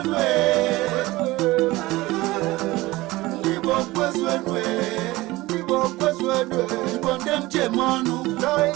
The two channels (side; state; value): left; quieter; 19.6 dB